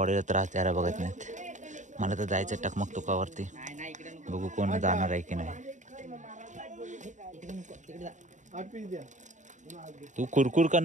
त्रास द्यायला बघत नाहीत. मला तर जायचं टकमकटोकावरती. बघू कोण जाणार आहे की नाही. तू कुरकुर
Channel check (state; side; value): late; left; 0.36 ms